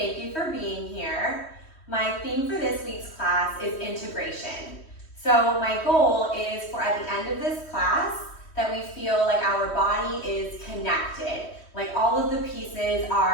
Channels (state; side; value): late; right; 3.1 ms